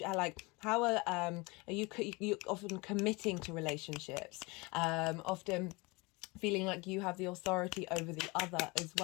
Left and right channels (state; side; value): quieter; right; 25.8 dB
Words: are you often committing to relationships, often feeling like you have the authority over the other as